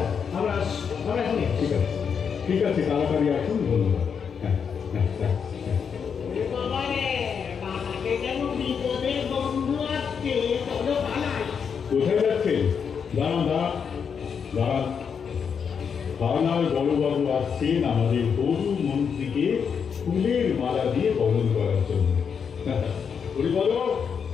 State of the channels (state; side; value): quieter; right; 6.7 dB